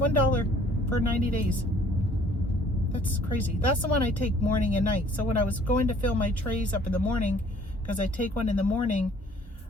for 90 days. That's crazy. That's the one I take morning and night. So when I was going to fill my trays up in the morning, because I take one in the morning,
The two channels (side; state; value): both; normal; correlation 0.57